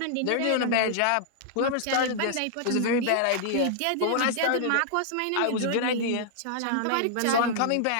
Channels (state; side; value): different; both; correlation -0.01